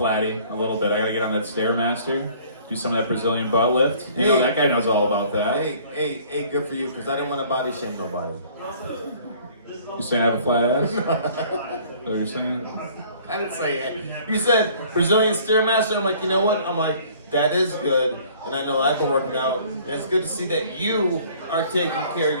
a little bit. I gotta get on that Stairmaster. Do some of that Brazilian butt lift. You know, that guy knows all about that. Hey, good for you, because I didn't want to body shame nobody. You saying I have a flat ass? Is that what you're saying? I didn't say it. You said Brazilian Stairmaster. I'm like, you know what? I'm like, that is good. And I know I've been working out. And it's good to see that you are taking care of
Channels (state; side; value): inverted; both; correlation -0.54